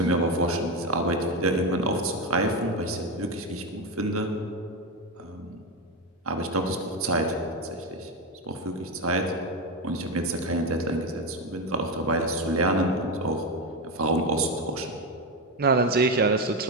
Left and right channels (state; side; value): normal; both; correlation 0.13